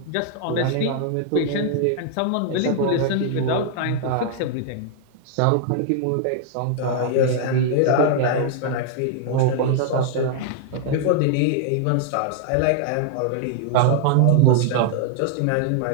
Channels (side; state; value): both; different; correlation -0.01